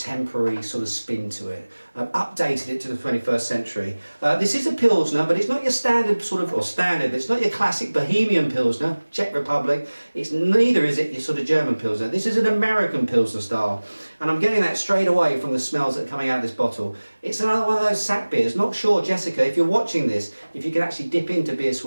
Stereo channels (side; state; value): both; inverted; correlation -1.00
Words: sort of spin to it, updated it to the 21st century. This is a Pilsner, but it's not your standard it's not your classic Bohemian Pilsner, Czech Republic. Neither is it your sort of German Pilsner. This is an American Pilsner style, and I'm getting that straight away from the smells that are coming out of this bottle. It's another one of those sack beers. Not sure, Jessica, if you're watching this, if you can actually dip into Beer